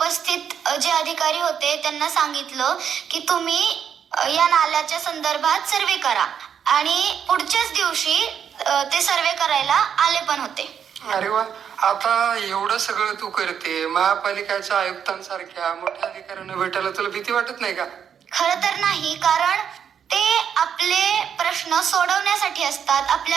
जे अधिकारी होते त्यांना सांगितलं की तुम्ही या नाल्याच्या संदर्भात सर्वे करा. आणि पुढच्याच दिवशी ते सर्वे करायला आले पण होते. अरे वा, आता एवढं सगळं तू करते, महापालिकेच्या आयुक्तांसारख्या मोठ्या अधिकाऱ्यांना भेटायला तुला भीती वाटत नाही का? खरं तर नाही, कारण ते आपले प्रश्न सोडवण्यासाठी असतात,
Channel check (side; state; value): left; quieter; 8.1 dB